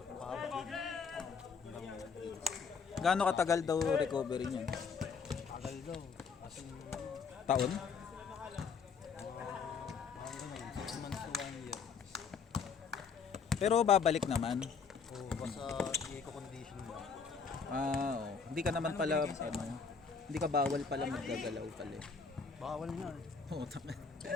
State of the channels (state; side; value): quieter; right; 5.6 dB